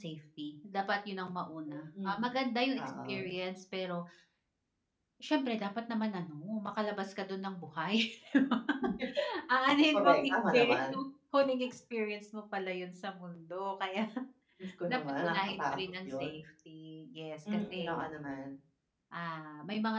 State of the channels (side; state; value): both; identical; correlation 1.00